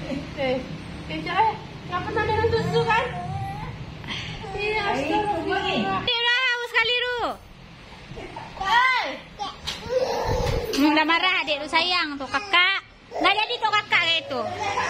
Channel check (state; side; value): identical; both; correlation 1.00